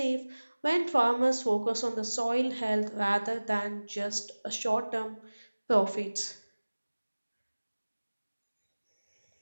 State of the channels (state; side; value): inverted; both; correlation -1.00